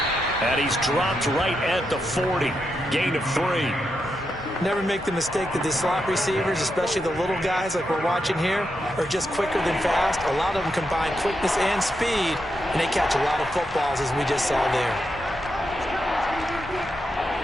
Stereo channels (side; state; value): both; normal; correlation 0.84